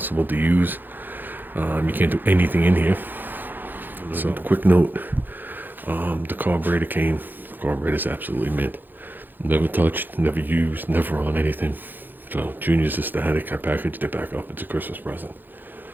to use. You can't do anything in here. So, quick note, the carburetor came. The carburetor's absolutely mint. Never touched, never used, never on anything. So Junior's aesthetic. I packaged it back up. It's a Christmas present.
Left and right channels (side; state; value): left; late; 0.090 ms